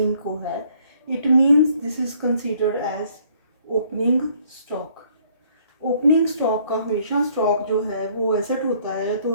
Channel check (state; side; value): inverted; both; correlation -0.63